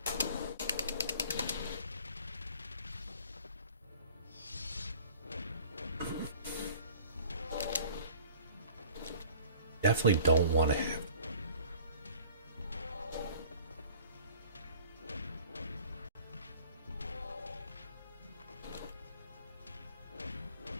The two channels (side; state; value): both; inverted; correlation -0.49